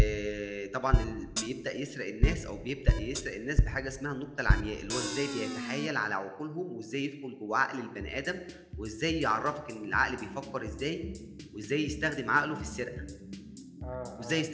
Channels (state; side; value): identical; both; correlation 1.00